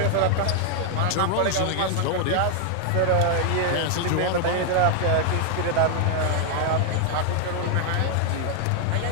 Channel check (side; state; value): both; different; correlation 0.00